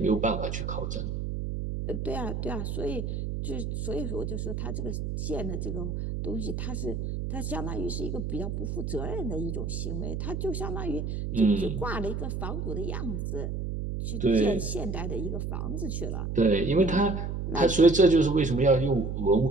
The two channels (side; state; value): right; noise; hum, 3 dB below the sound